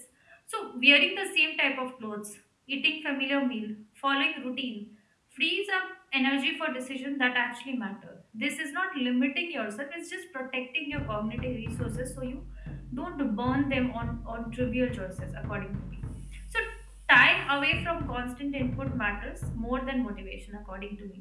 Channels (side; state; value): both; identical; correlation 1.00